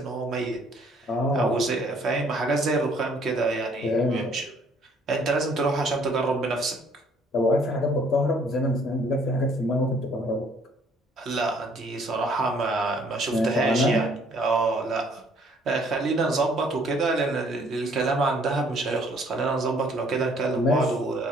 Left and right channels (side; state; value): both; normal; correlation 0.61